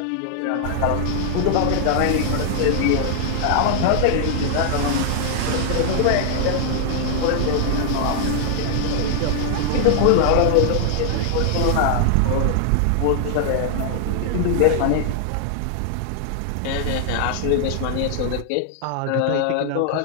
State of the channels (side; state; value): both; different; correlation -0.01